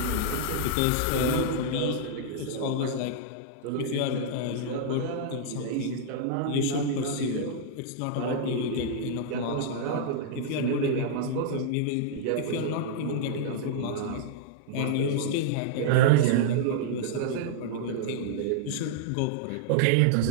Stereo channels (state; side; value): different; both; correlation -0.02